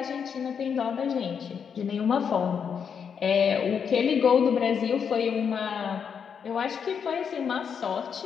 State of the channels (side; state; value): right; quieter; 7.0 dB